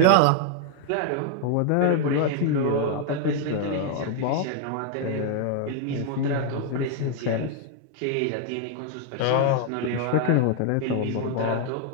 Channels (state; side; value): different; both; correlation 0.00